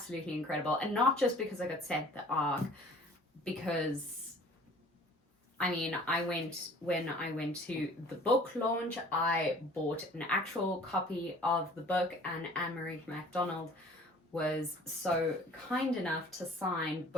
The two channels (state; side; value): normal; both; correlation 0.50